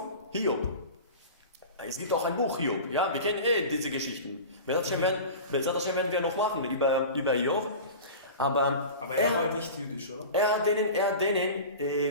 Es gibt auch ein Buch Hiob, ja, wir kennen diese Geschichten. Das werden wir noch machen über Hiob. Aber er war nicht jüdisch, oder? Er hat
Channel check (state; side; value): inverted; both; correlation -0.34